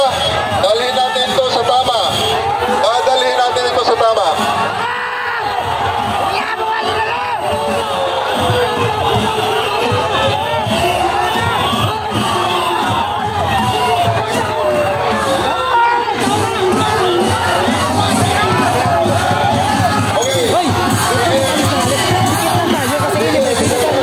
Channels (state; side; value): identical; both; correlation 1.00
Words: dalhin natin ito sa tama. Dalhin natin ito sa tama.